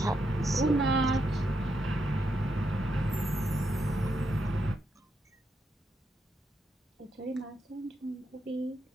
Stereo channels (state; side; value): normal; both; correlation 0.81